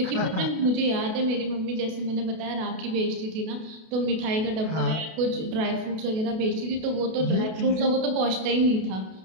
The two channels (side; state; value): left; late; 32 ms